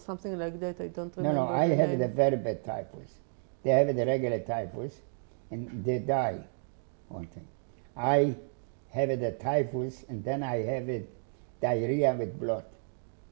like that? I don't remember. No, I have the very bad typhus. They have the regular typhus, and they die. One thing. I have the typhus, and then I have it diarrhea with blood,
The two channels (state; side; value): silent; left; 56 dB below the other